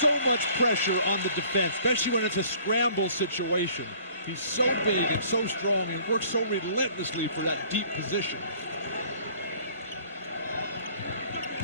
much pressure on the defense, especially when it's a scramble situation. He's so big and so strong and works so relentlessly for that deep position.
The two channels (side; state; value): both; inverted; correlation -0.54